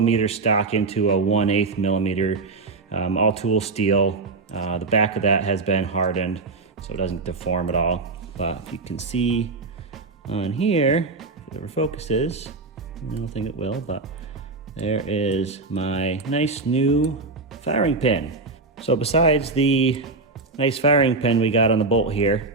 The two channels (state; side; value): quieter; left; 3.8 dB